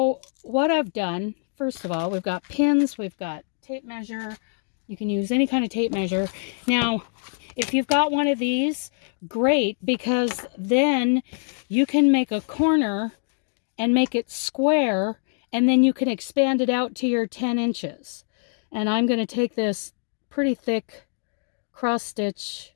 what I've done, first of all, we've got pins, we've got tape measure. You can use any kind of tape measure. Now, if you've got one of these, great, because then you can make a corner and make it square, and then you can expand it out to your 10 inches. And I'm going to take this pretty thick cross stitch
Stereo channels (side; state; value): right; silent; digital silence